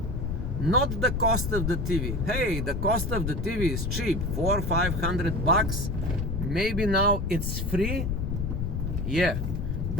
not the cost of the TV. Hey, the cost of the TV is cheap, $400 or $500. Maybe now it's free. Yeah,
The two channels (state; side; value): noise; left; rumble, 1 dB below the sound